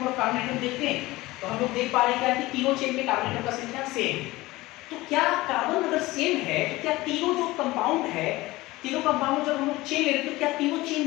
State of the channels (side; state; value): right; quieter; 19.4 dB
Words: of carbon atom देखते हैं तो हम लोग देख पा रहे हैं क्या कि तीनों चेन में कार्बन एटम का संख्या सेम। तो क्या कार्बन अगर सेम है तो क्या तीनों जो कंपाउंड है, तीनों कंपाउंड जब हम लोग चेन ले रहे हैं तो क्या तीनों चेन